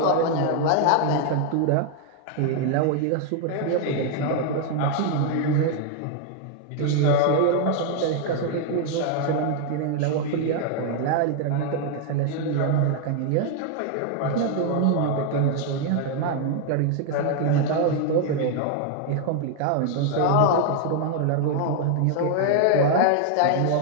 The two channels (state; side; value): different; both; correlation 0.00